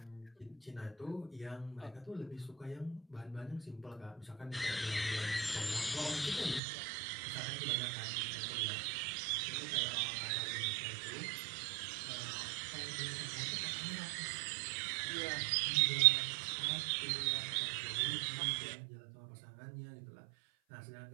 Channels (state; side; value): drops out; left; at 6.6 s